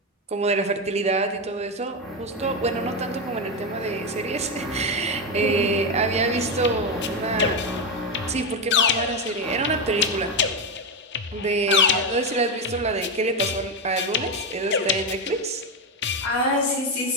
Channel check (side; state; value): both; normal; correlation 0.11